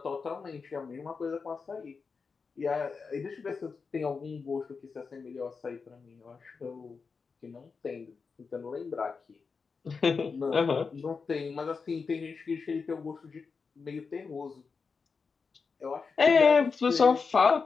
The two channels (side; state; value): right; quieter; 5.0 dB